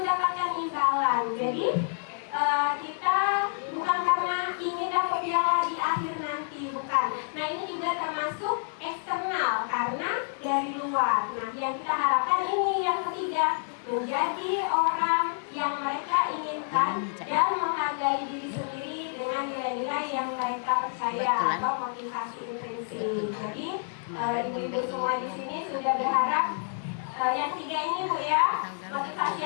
mendapatkan imbalan. Jadi kita bukan karena ingin dapat piala di akhir nanti, bukan. Nah ini juga termasuk eksternal karena dari luar. Nah yang kita harapkan ini yang ketiga, menjadi orang yang mereka inginkan dan menghargai diri sendiri dengan nilai-nilai yang mereka percaya atau motivasi intrinsik. Jadi ibu-ibu semua di sini sudah berharap yang 3 ini Bu ya, motivasi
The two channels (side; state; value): right; silent; 59 dB below the other